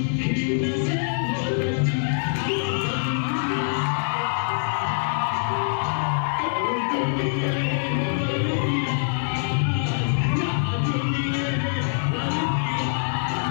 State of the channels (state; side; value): silent; right; digital silence